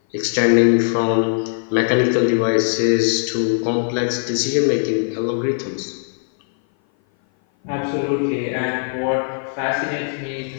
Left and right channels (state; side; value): silent; right; 57 dB below the other